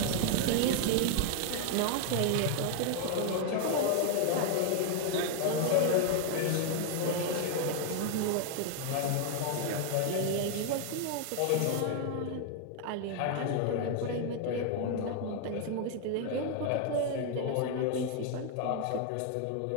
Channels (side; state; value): both; different; correlation 0.00